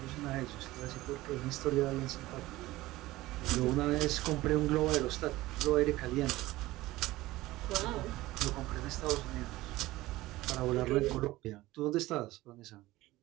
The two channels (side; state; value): left; quieter; 17.9 dB